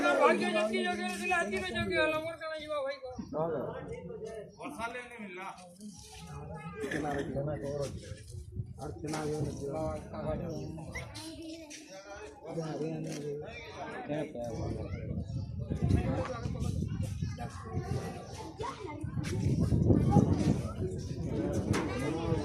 ভাগ্য যেকি যোগে দিল আজকে যোগে হলো মোর কেন যাবা ভাই কো বর্ষা লেনে মিললা আর छना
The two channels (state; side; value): identical; both; correlation 1.00